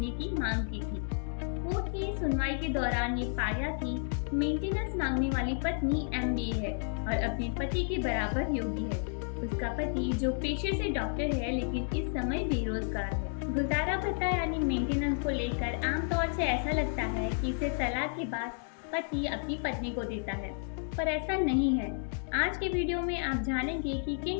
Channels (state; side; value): silent; right; 57 dB below the other